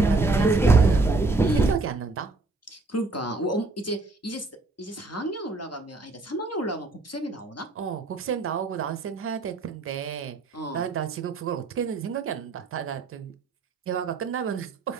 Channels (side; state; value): left; quieter; 3.4 dB